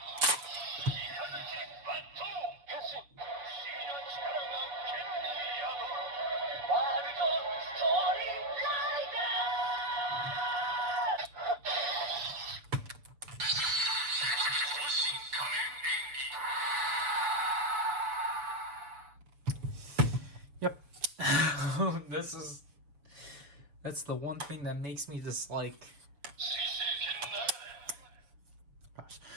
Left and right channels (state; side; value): late; left; 6.9 ms